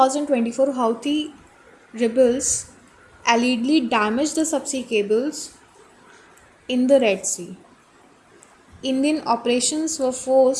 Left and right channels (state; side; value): identical; both; correlation 1.00